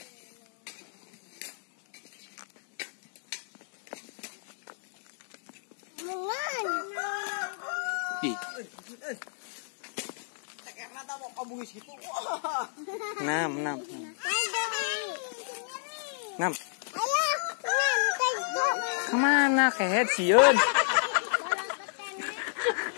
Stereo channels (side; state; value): right; silent; digital silence